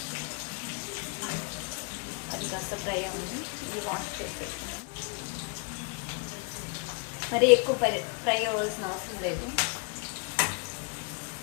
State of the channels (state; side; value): quieter; right; 34.4 dB